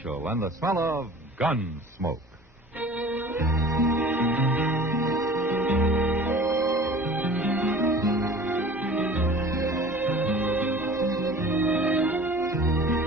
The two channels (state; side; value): normal; both; correlation 0.43